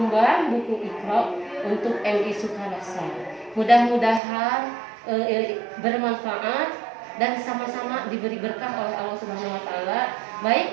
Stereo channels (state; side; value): drops out; left; at 4.2 s